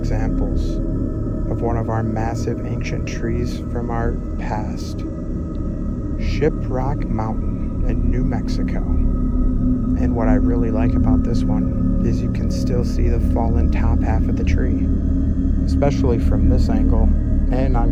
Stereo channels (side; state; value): both; identical; correlation 1.00